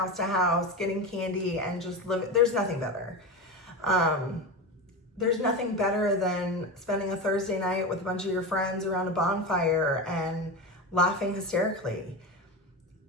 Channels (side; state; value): both; normal; correlation 0.21